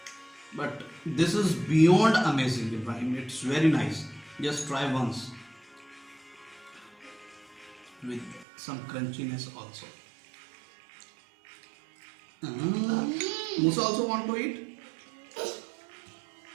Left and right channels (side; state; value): left; drops out; at 8.5 s